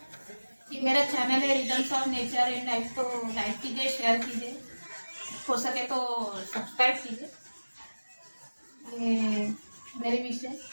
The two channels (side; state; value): both; inverted; correlation -1.00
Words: ये मेरा चैनल है rhythms of nature and life, तो लाइक कीजिए, शेयर कीजिए, हो सके तो सब्सक्राइब कीजिए। ये मेरी विश है,